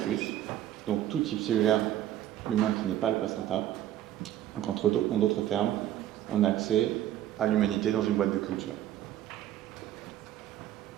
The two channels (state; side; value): quieter; left; 12.4 dB